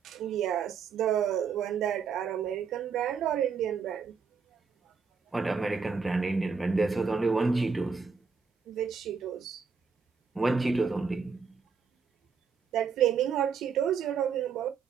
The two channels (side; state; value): left; quieter; 5.7 dB